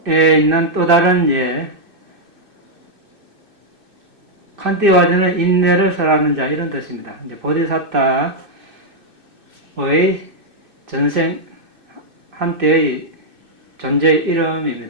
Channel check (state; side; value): late; left; 2.6 ms